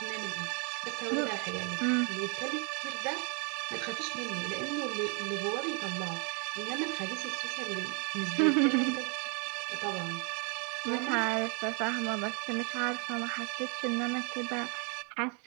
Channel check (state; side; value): quieter; left; 35.9 dB